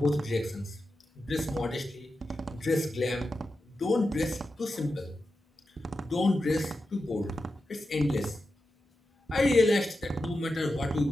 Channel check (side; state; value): both; normal; correlation 0.90